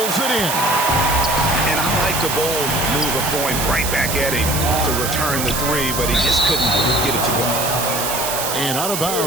it in. And I like the Bulls move of going right back at him to return the 3, but he just couldn't get it to go. And out of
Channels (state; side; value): noise; right; hiss, 3 dB below the sound